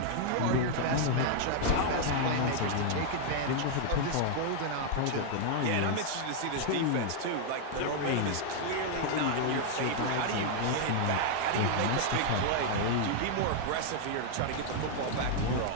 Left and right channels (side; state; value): both; different; correlation 0.00